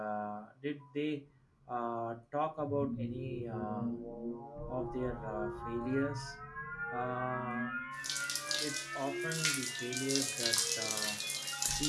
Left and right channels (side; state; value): both; identical; correlation 1.00